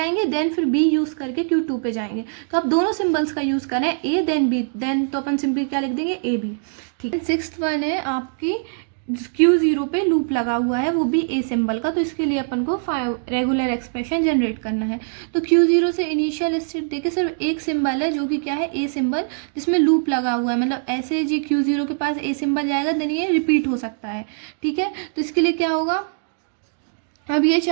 देन फिर B यूज़ करके Q2 पे जाएंगे, तो आप दोनों सिंबल्स का यूज़ करें, A देन B, देन तो अपन सिंपली क्या लिख देंगे, AB। ठीक है, सिक्स्थ वन है आपकी Q0 पे लूप लगा हुआ है, वो भी A सिंबल का, तो इसके लिए अपन को रेगुलर एक्सप्रेशन जनरेट करना है। तो Q0 से इनिशियल स्टेट देखिए सिर्फ एक सिंबल है जो कि क्या है, A सिंबल, जिसमें लूप लगा हुआ है। मतलब ऐसे जी Q0 के पास A सिंबल जाएगा देन ये रिपीट हो सकता है। ठीक है, तो इसके लिए क्या होगा, अब ये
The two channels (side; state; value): left; silent; digital silence